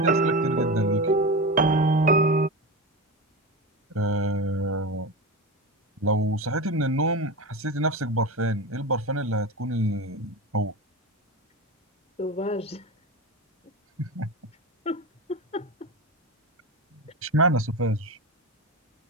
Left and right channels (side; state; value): both; normal; correlation 0.23